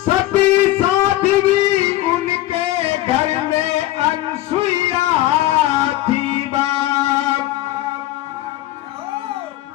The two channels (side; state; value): right; quieter; 15.6 dB